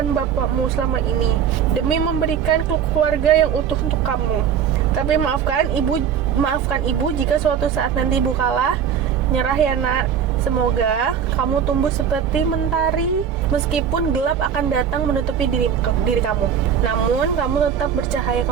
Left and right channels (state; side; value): quieter; left; 8.1 dB